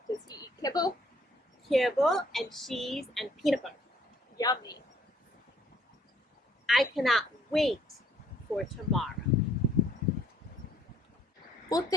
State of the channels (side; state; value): both; normal; correlation 0.63